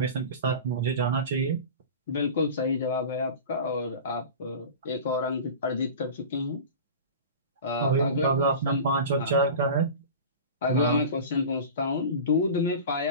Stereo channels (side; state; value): both; inverted; correlation -0.33